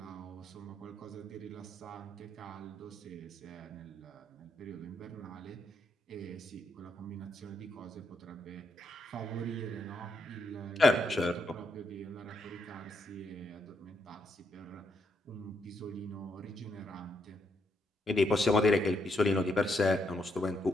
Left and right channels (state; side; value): normal; both; correlation 0.78